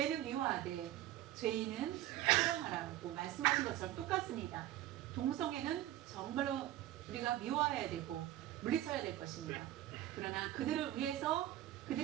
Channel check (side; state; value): left; quieter; 14.2 dB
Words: 미워하되 죄인은 사랑하라고 말씀하신 것처럼 똑같습니다. 동성애는 정말로 우리가 미워해야 되고 물리쳐야 될 것입니다. 그러나 그들을 위해서